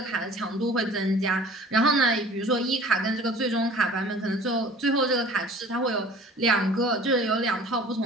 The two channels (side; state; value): both; normal; correlation 0.46